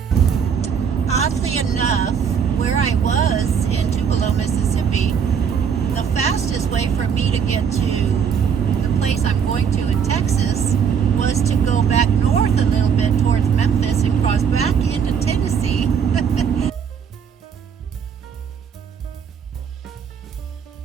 Oddly enough, where I was in Tupelo, Mississippi, the fastest way for me to get to the place I'm going to in Texas was to go back north a little bit towards Memphis and cross back into Tennessee.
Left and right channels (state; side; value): quieter; left; 7.1 dB